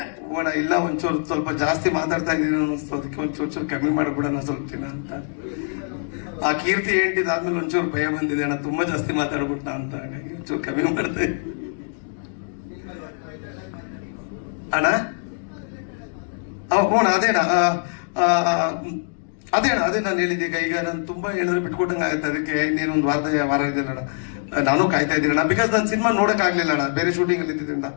ಓಣ ಇಲ್ಲ, ಒಂಚೂರು ಸ್ವಲ್ಪ ಜಾಸ್ತಿ ಮಾತಾಡ್ತಾ ಇದ್ದೀನಿ ಅನ್ನಿಸ್ತು, ಅದಕ್ಕೆ ಒಂಚೂರು ಕಮ್ಮಿ ಮಾಡ್ಬಿಡೋಣ ಸ್ವಲ್ಪ ದಿನ ಅಂತ. ಆ ಕೀರ್ತಿ ಆದ್ಮೇಲೆ ಒಂಚೂರು ಭಯ ಬಂದಿದೆ ಅಣ್ಣ, ತುಂಬಾ ಜಾಸ್ತಿ ಮಾತಾಡ್ಬಿಟ್ಟ ಅಂತ, ಹಾಗಾಗಿ ಒಂಚೂರು ಕಮ್ಮಿ ಮಾಡ್ದೆ ಅಣ್ಣ. ಹ್ಞೂ ಅದೇಣ್ಣ, ಅದೇ ನಾನು ಹೇಳಿದ್ದೆ. ಈಗ ನಾನು ತುಂಬಾ ಹೇಳಿದ್ರೆ ಬಿಟ್ಕೊಟ್ಟಂಗೆ ಆಗುತ್ತೆ, ಅದಕ್ಕೆ ಇನ್ನೇನೊಂದು ವಾರ ಇದೆಯಲ್ಲ ಅಣ್ಣ, ನಾನು ಕಾಯ್ತಾ ಇದ್ದೀನಿ ಅಣ್ಣ. ಬಿಕಾಸ್ ನಾನು ಸಿನಿಮಾ ನೋಡಕ್ ಆಗ್ಲಿಲ್ಲ ಅಣ್ಣ, ಬೇರೆ ಶೂಟಿಂಗ್ ಅಲ್ಲಿ ಇದ್ದಿದ್ದರಿಂದ.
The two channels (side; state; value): right; silent; digital silence